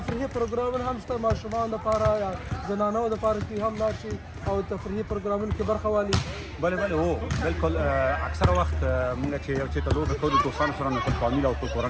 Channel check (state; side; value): identical; both; correlation 1.00